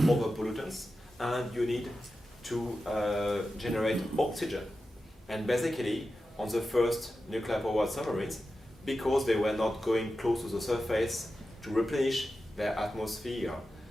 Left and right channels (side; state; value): both; normal; correlation 0.92